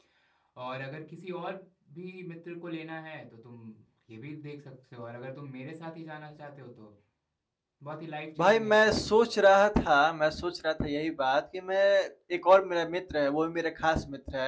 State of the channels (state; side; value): identical; both; correlation 1.00